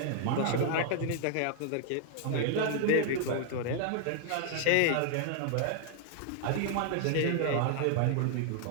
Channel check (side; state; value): both; different; correlation -0.01